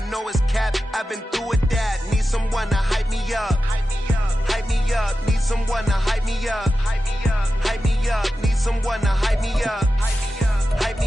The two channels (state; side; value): normal; both; correlation 0.93